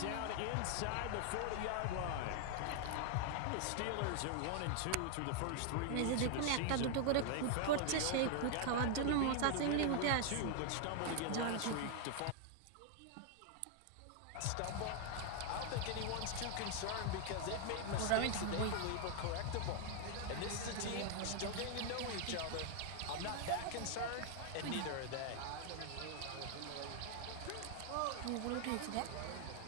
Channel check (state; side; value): different; both; correlation 0.00